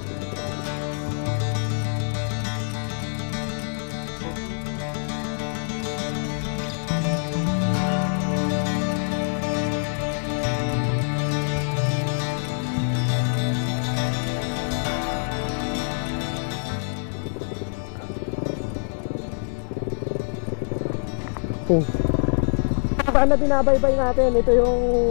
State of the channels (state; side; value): silent; right; 62 dB below the other